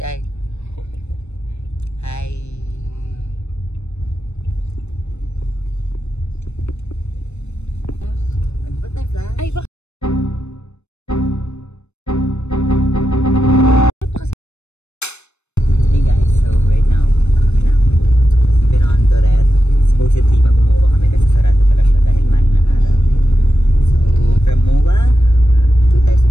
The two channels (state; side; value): late; right; 0.81 ms